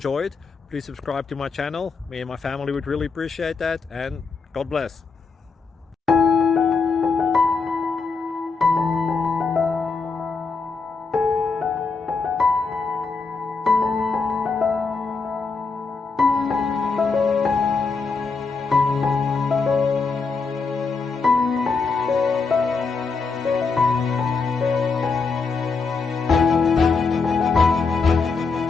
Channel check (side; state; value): right; quieter; 4.6 dB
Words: Please subscribe to my channel. Me and my family would really appreciate that, and God bless.